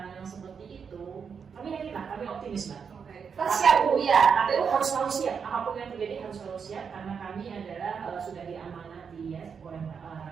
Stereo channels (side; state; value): left; quieter; 6.4 dB